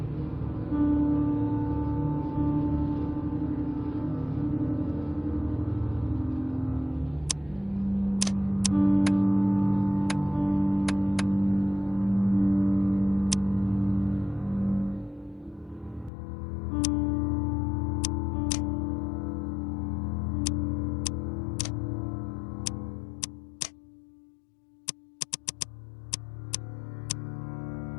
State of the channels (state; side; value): drops out; right; at 16.1 s